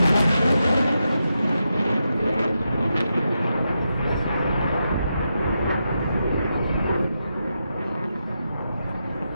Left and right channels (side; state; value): both; inverted; correlation -0.86